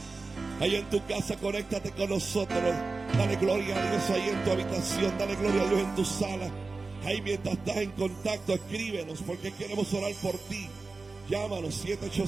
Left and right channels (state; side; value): quieter; left; 3.8 dB